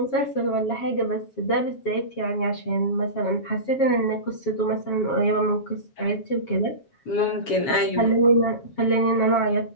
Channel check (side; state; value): right; late; 7.3 ms